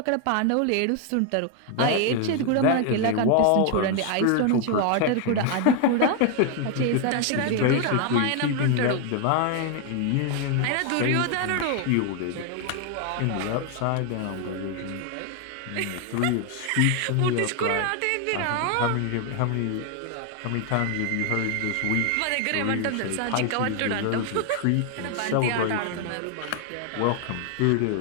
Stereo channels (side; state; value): both; different; correlation 0.01